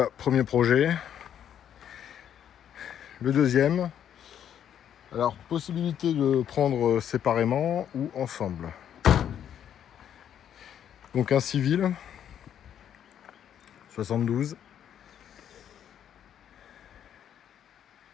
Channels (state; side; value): quieter; right; 9.6 dB